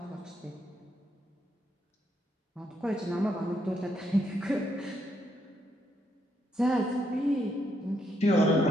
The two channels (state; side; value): normal; both; correlation 0.76